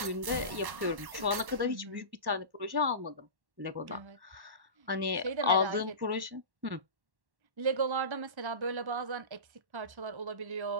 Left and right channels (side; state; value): left; late; 1.1 ms